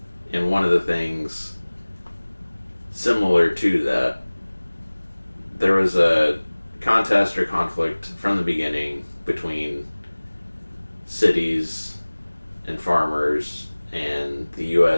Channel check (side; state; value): both; inverted; correlation -1.00